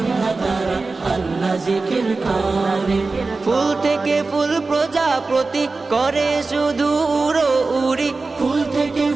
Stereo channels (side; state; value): left; quieter; 3.8 dB